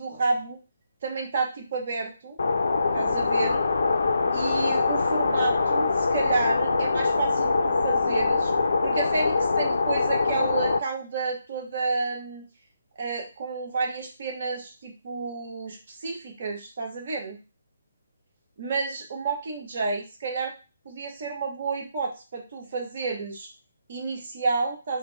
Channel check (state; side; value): inverted; both; correlation -0.81